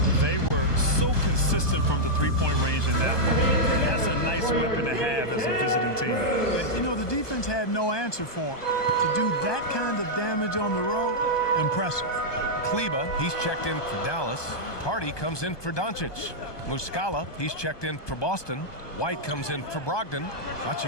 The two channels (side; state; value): right; late; 1.2 ms